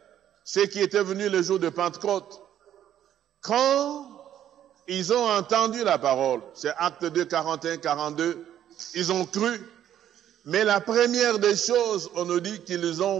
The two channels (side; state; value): left; quieter; 10.9 dB